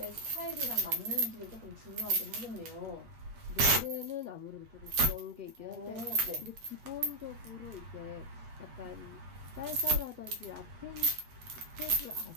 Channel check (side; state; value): left; late; 8.3 ms